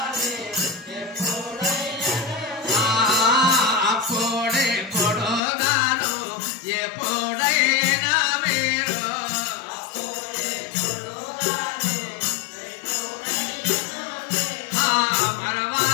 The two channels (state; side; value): drops out; right; at 5.4 s